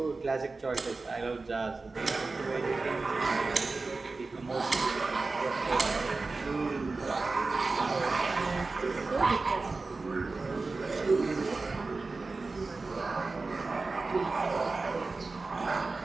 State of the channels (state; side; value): quieter; left; 3.8 dB